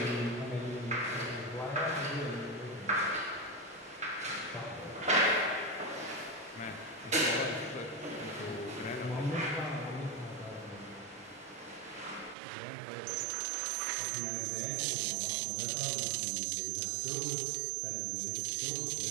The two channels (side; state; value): left; drops out; at 12.4 s